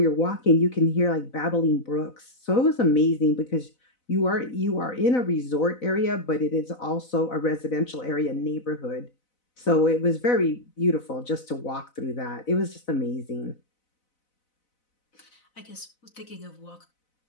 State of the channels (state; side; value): late; right; 4.0 ms